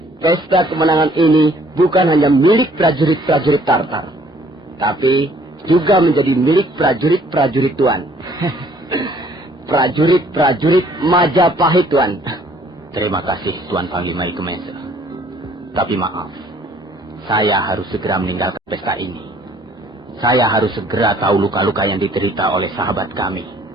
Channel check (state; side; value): normal; both; correlation 0.59